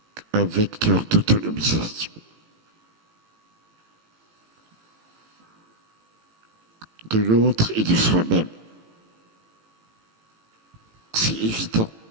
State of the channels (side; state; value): left; late; 18 ms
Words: un vecteur d'autonomisation. De l'autre et de soi-même. C'est évident.